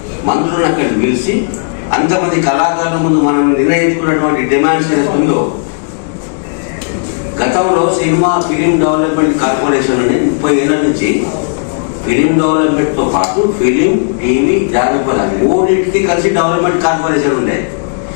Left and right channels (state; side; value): silent; right; digital silence